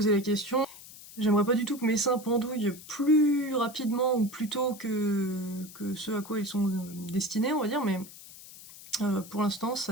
la question. J'aimerais pas du tout que mes seins pendouillent plus rapidement ou plus tôt que ce à quoi ils sont destinés, on va dire, mais pour l'instant, ça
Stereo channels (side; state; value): left; noise; hiss, 17 dB below the sound